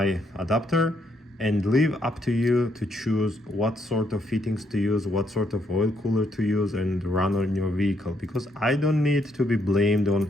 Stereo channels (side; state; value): both; normal; correlation 0.74